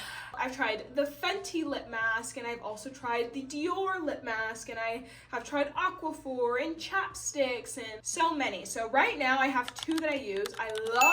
I've tried the Fenty lip mask, and I've also tried the Dior lip mask, and I have tried Aquaphor and chapsticks and so many. So right now I have two that I use. I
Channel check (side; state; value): both; identical; correlation 1.00